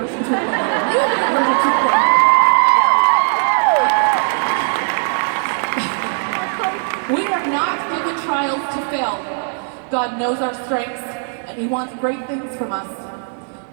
2.0. You get a version 2.0. We are not given trials to fail. God knows our strengths, and He wants great things from us.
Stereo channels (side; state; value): left; silent; 67 dB below the other